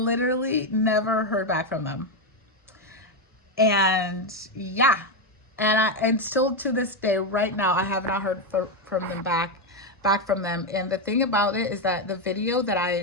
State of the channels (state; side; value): normal; both; correlation 0.07